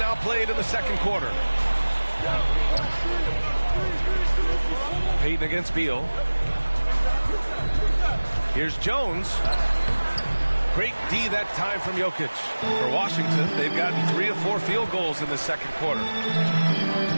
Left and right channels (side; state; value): both; inverted; correlation -1.00